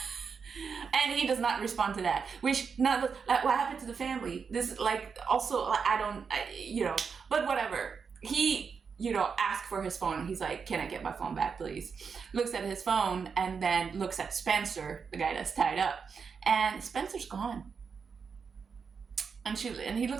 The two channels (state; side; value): quieter; left; 5.9 dB